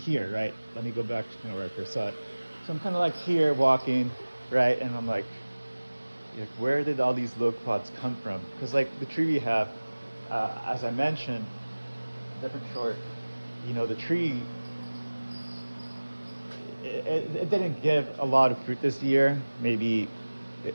right? Let me go back to where I first saw it. So I'm kind of like here walking, right? And I'm like, where did all these loquats come from? Because the tree we have, as I mentioned, different short, the tree, it didn't give a lot of fruit this year. Maybe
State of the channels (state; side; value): inverted; both; correlation -1.00